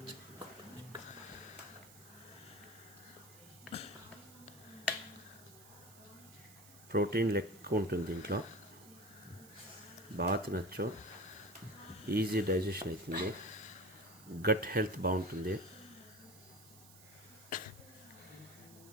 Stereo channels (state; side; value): noise; right; hiss, 20 dB below the sound